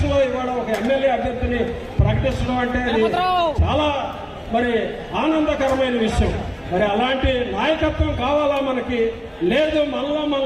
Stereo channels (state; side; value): identical; both; correlation 1.00